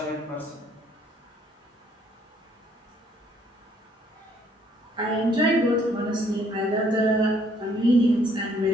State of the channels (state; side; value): normal; both; correlation 0.65